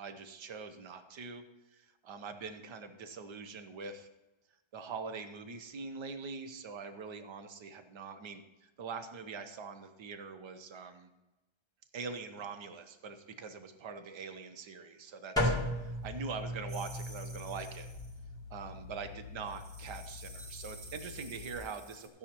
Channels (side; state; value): left; late; 1.3 ms